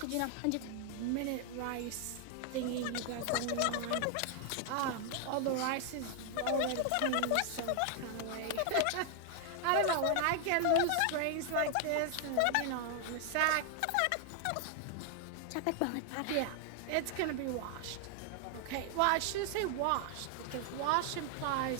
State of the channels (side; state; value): both; different; correlation 0.00